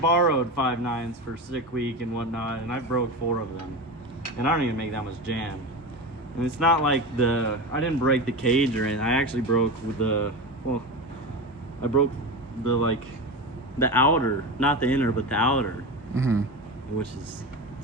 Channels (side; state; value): both; normal; correlation 0.23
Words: borrowed 5.9s for sick week and whatnot, and I broke 4 of them, and I don't even make that much jam. And it's not like I didn't break the cage or anything. I actually broke with I broke the outer, not the inner, but the outer, Mm-hmm. which is